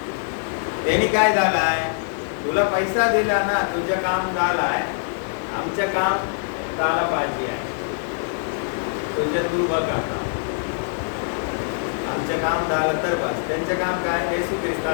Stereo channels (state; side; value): silent; right; digital silence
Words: त्यांनी काय झालाय, तुला पैसा दिला ना, तुझं काम झालाय, आमचं काम झालं पाहिजे आहे, तुझं तू बघ आता, आमचं काम झालं तर बस. त्यांचं काम काय, येशू